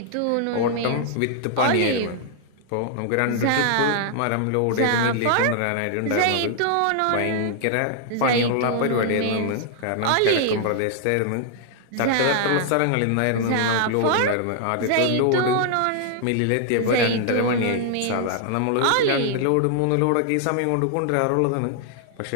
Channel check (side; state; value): both; different; correlation -0.01